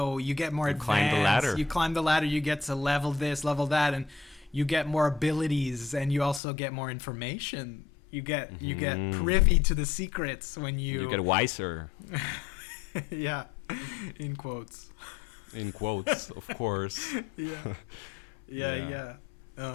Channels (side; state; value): right; drops out; at 6.4 s